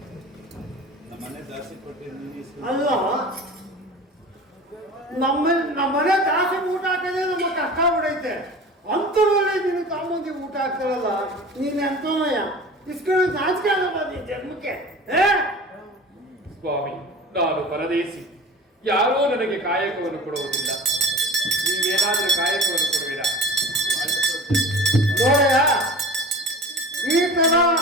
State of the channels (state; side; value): normal; both; correlation 0.37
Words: ಅಲ್ಲ ನಮ್ಮನೆ ದಾಸಿ ಊಟ ಹಾಕದೆ ನಮ್ಮ ಕಷ್ಟ ಬಿಡೈತೆ. ಅಂತರಲ್ಲಿ ನೀನು ತಾಮಂದಿ ಊಟ ಹಾಕ್ತಾರಲ್ಲ, ನೀನ್ ಎಂತನಯ್ಯ ಇಸ್ಕೊಂಡು ನಾಚಿಕೆ ಆಗಲ್ಲ ನೀನ್ ಜನ್ಮಕ್ಕೆ. ಸ್ವಾಮಿ, ನಾನು ಪರದೇಶಿ, ಯಾರೂ ನನಗೆ ಕಾಯಕವನ್ನು ಕೊಡುವುದಿಲ್ಲ. ನೀವೇನಾದರೂ ಕಾಯಕವನ್ನು ಕೊಡುವಿರಾ? ನೋಡಯ್ಯ, ಈ ತರ